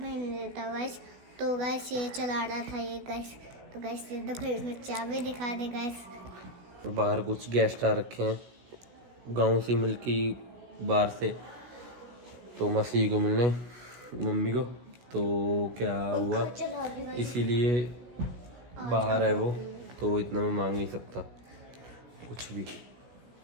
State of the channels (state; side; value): late; left; 16 ms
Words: नहीं देता गाइस। तो गाइस ये चला रहा था ये गाइस। तो गाइस ये देखो इसमें चाबी दिखा दे गाइस। बाहर कुछ गेस्ट आ रखे हैं गांव से मिलके बाहर से, तो मसीह को मिलने मम्मी को। तो क्या हुआ इसीलिए बाहर है वो, तो इतना मैं मांग नहीं सकता कुछ भी।